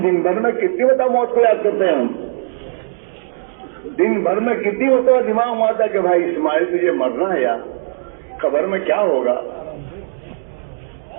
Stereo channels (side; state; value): left; silent; 67 dB below the other